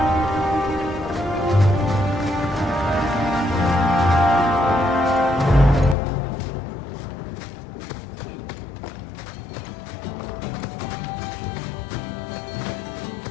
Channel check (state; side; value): drops out; right; at 6.0 s